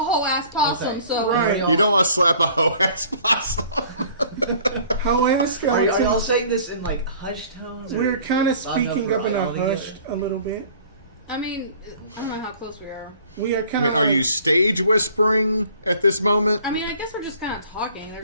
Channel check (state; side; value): inverted; both; correlation -0.52